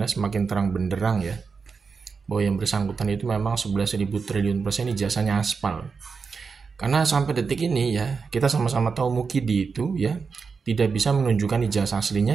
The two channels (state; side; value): quieter; left; 5.2 dB